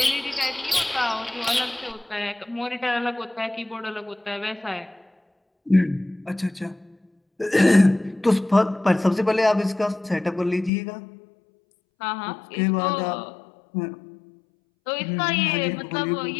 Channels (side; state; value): right; drops out; at 10.7 s